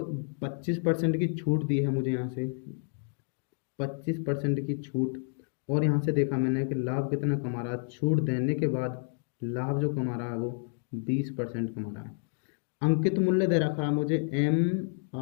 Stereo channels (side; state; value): right; silent; 58 dB below the other